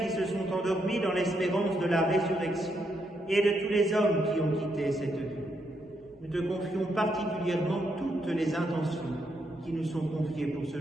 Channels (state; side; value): normal; both; correlation 0.79